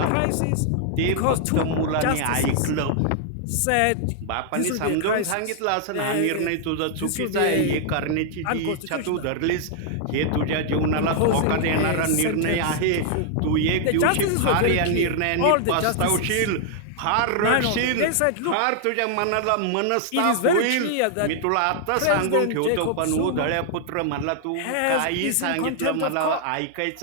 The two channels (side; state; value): both; different; correlation 0.00